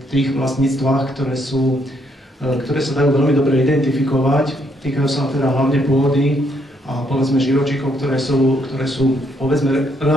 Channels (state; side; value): normal; both; correlation 0.72